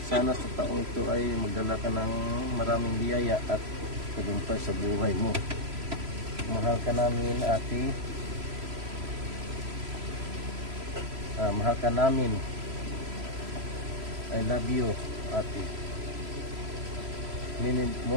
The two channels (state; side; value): late; left; 3.0 ms